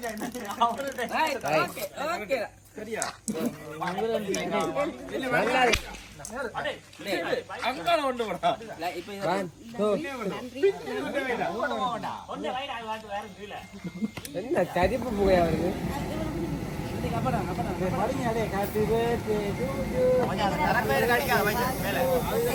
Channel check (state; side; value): identical; both; correlation 1.00